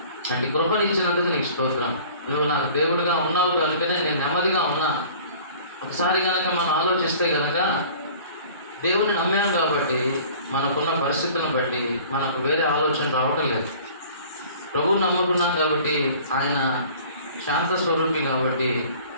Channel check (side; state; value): both; inverted; correlation -0.47